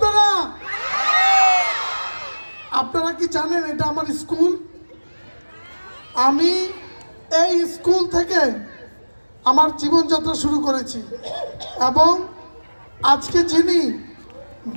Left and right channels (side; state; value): both; inverted; correlation -1.00